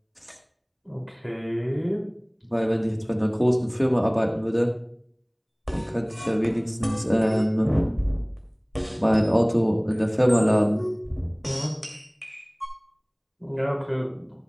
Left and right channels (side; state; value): both; identical; correlation 1.00